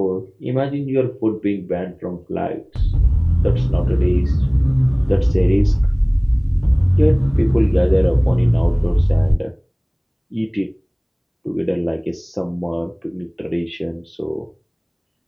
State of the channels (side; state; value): both; identical; correlation 1.00